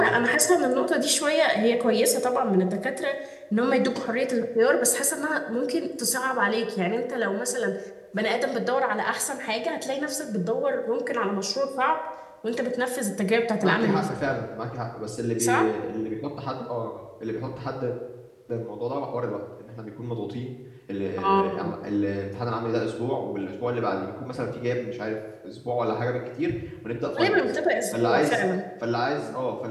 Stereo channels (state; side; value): identical; both; correlation 1.00